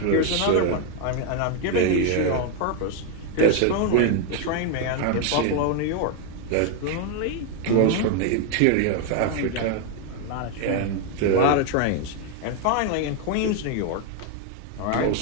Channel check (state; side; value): different; both; correlation 0.01